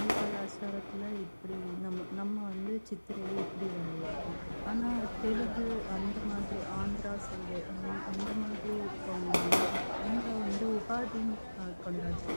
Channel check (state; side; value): inverted; both; correlation -1.00